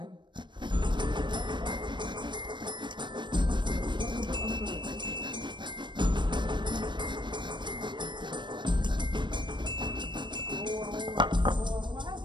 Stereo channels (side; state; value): left; late; 0.22 ms